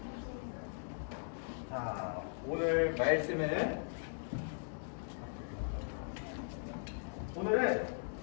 자, 오늘 말씀은 오늘은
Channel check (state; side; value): silent; right; digital silence